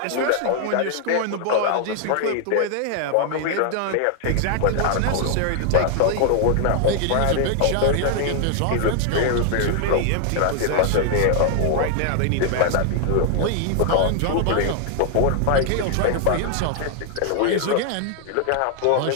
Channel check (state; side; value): different; both; correlation 0.00